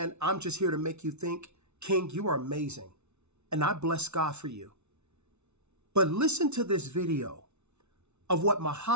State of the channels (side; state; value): left; late; 0.81 ms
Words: I'm Just Here to Make You Think. King, you are amazing. And I bless God for you. But listen to this video of what